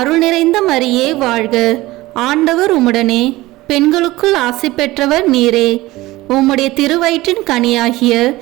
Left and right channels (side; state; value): left; quieter; 18.7 dB